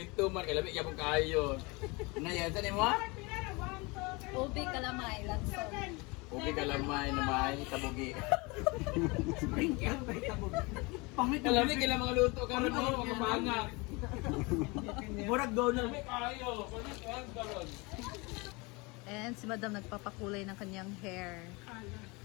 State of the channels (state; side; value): quieter; right; 26.5 dB